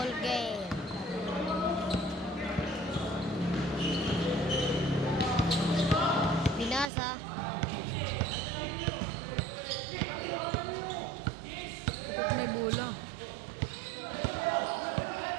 game. Binasa. May bola.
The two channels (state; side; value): drops out; left; at 6.9 s